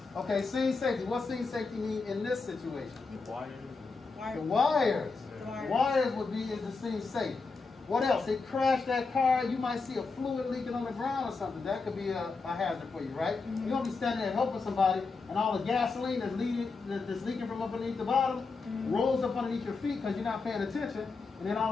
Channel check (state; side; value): quieter; right; 4.3 dB